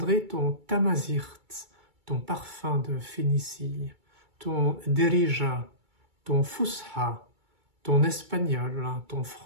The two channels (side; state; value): left; late; 2.3 ms